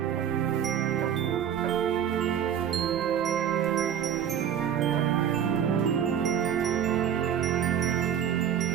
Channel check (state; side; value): quieter; left; 9.1 dB